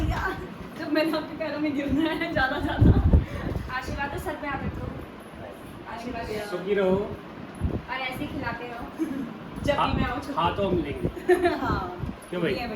जब मैंने आपके पैरों में गिरना है ज्यादा आशीर्वाद दो, सर पे हाथ रखो। आशीर्वाद दो सुखी रहो, और ऐसे ही खिलाते रहो। जब भी मैं आऊँ हाथों मिलेंगे। हाँ क्यों भाई?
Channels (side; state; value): both; identical; correlation 1.00